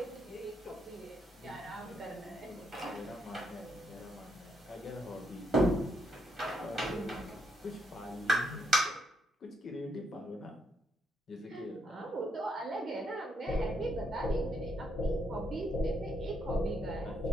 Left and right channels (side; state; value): both; normal; correlation 0.76